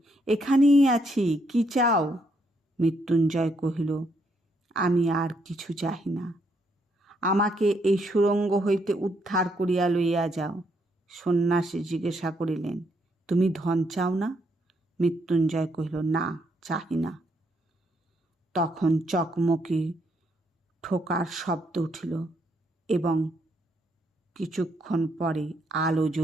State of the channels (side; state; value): both; normal; correlation 0.74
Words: এখানেই আছি, কি চাও? মৃত্যুঞ্জয় কহিল, আমি আর কিছু চাহি না, আমাকে এই সুড়ঙ্গ হইতে উদ্ধার করিয়া লইয়া যাও। সন্ন্যাসী জিজ্ঞাসা করিলেন, তুমি ধন চাও না? মৃত্যুঞ্জয় কহিল, না, চাহি না। তখন চকমকি ঠোকার শব্দ উঠিল এবং কিছুক্ষণ পরে আলো